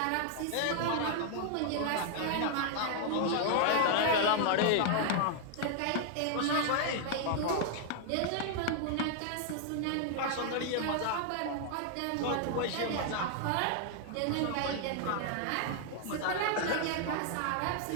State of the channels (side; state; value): both; different; correlation 0.00